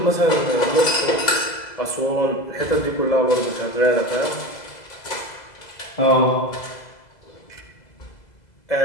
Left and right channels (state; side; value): late; right; 2.0 ms